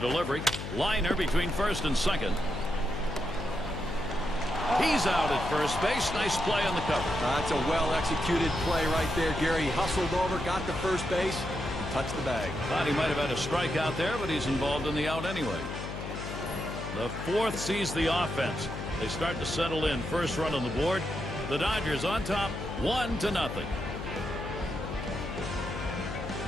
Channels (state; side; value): noise; left; hum, 7 dB below the sound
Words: Liner between first and second. He's out at first base. Nice play on the cover. That's a well-executed play right there, Gary. He hustled over, got to first base, and touched the bag. Thought he might have had a strikeout there, but he's involved in the out anyway. The fourth sees the offense. They start to settle in. First run on the board. The Dodgers on top, 1-0.